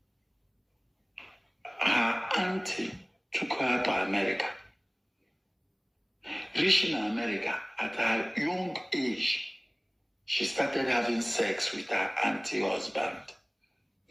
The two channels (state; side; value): identical; both; correlation 1.00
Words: Her auntie took her to America. Reaching America at her young age, she started having sex with her auntie husband,